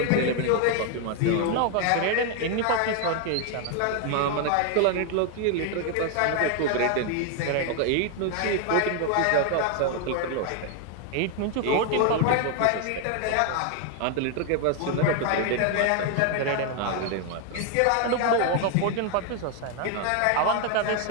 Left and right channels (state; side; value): different; both; correlation 0.01